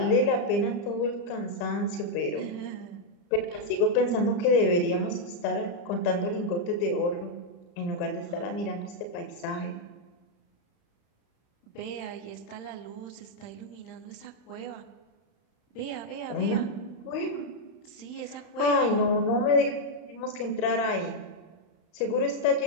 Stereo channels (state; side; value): late; right; 35 ms